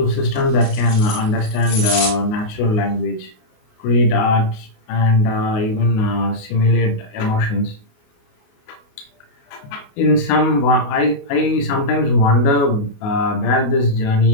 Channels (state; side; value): late; right; 28 ms